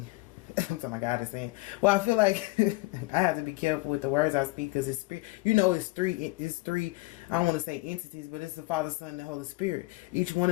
something my God is saying. Well, I feel like I have to be careful with the words I speak, because it's spirit. You know, it's three. I don't want to say entities, but it's the Father, Son, and the Holy Spirit. Each one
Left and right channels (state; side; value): quieter; right; 22.5 dB